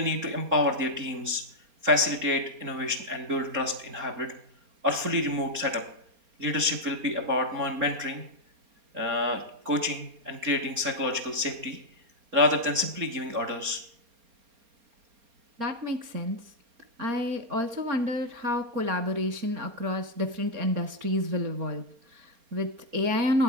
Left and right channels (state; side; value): late; left; 4.3 ms